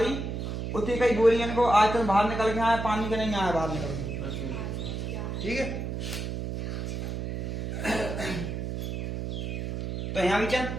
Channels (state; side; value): noise; right; hum, 4 dB below the sound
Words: उतनी कई गोली इनको आयतन बाहर निकल के आया, पानी का नहीं आया बाहर निकल के, ठीक है। तो यहां भी चल